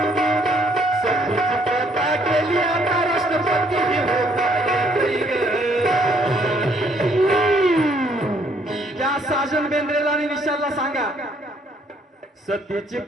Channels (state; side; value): normal; both; correlation 0.66